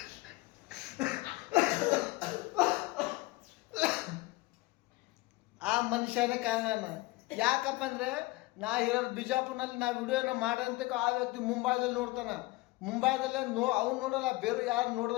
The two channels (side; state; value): right; quieter; 20.9 dB